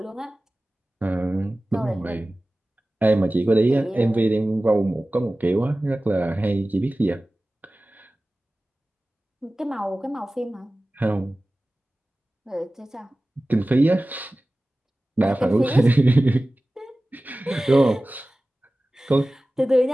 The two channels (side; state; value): both; normal; correlation 0.97